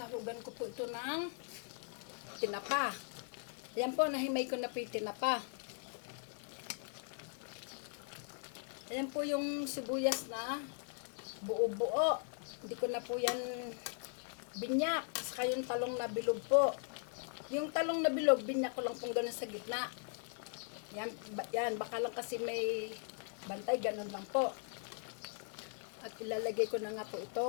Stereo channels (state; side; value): silent; right; 52 dB below the other